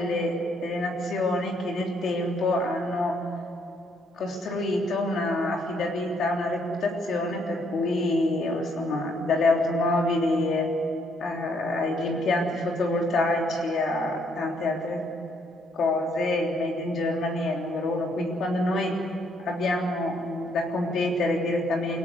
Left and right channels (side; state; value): both; normal; correlation 0.70